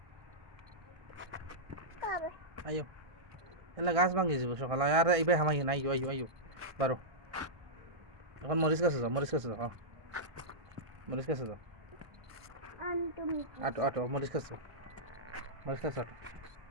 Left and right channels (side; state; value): left; late; 1.6 ms